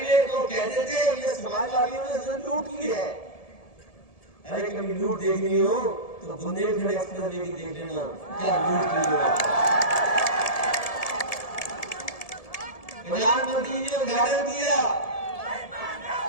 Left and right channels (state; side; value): late; right; 1.7 ms